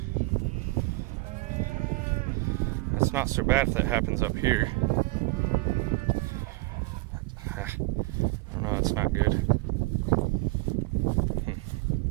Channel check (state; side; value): quieter; left; 23.6 dB